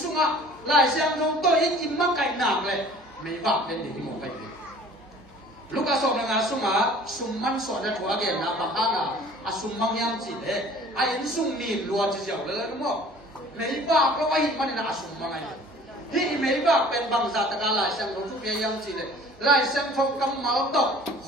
lại xem không tôi ít im mắc cạnh nàng này mấy vợ bên để một cái gì lúc à sổ là sung man sổ đã thua cái nào bằng hàng sung mang nhang chỉ đấy in sung nhìn luôn chỉ dẻo lên đúng không mấy vợ có ai mà nên sung mang ai thì mấy vợ bên bằng giả tất cả lại xem không chút cái nhang chỉ đấy lại xem không cầm máu tóc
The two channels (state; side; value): normal; both; correlation 0.49